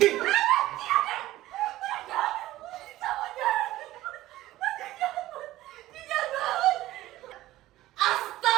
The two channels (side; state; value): left; quieter; 15.9 dB